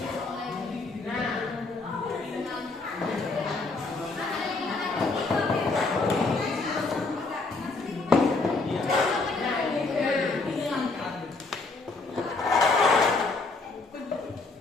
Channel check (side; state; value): right; quieter; 3.7 dB